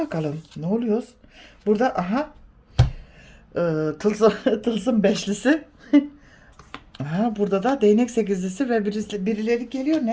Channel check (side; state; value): both; identical; correlation 1.00